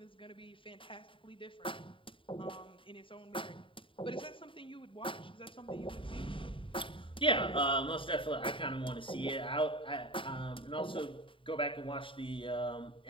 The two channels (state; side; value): late; right; 0.25 ms